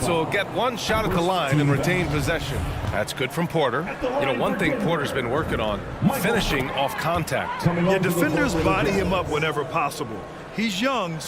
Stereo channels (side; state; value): both; identical; correlation 1.00